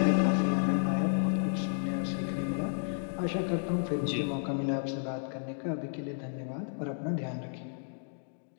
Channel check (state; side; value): silent; right; digital silence